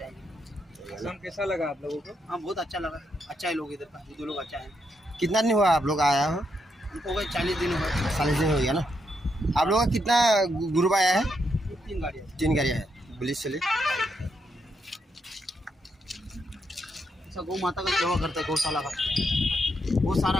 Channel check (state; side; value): normal; both; correlation 0.80